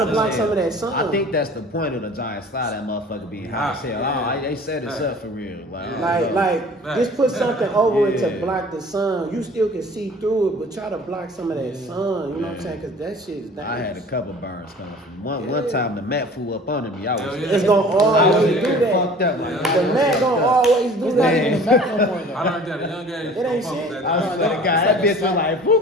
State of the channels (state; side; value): normal; both; correlation 0.45